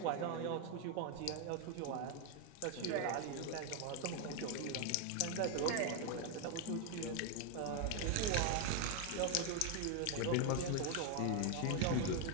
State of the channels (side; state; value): both; different; correlation 0.01